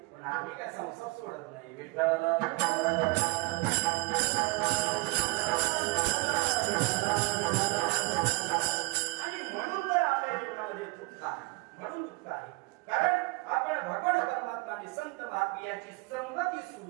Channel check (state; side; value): quieter; left; 25.3 dB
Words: पण आम्ही काय संसार सोडत नाही. विठ्ठल आणि म्हणून तर आपल्या जीवनामध्ये दुःख आहे, म्हणून दुःख आहे. कारण आपण भगवान परमात्मा आणि संत महात्मे यांची संगती